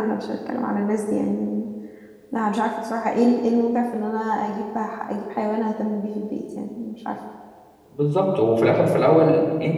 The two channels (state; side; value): identical; both; correlation 1.00